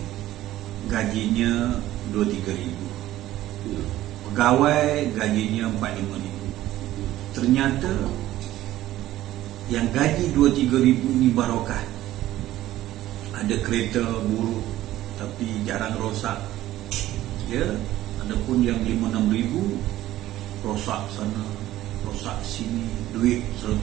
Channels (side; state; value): left; quieter; 14.6 dB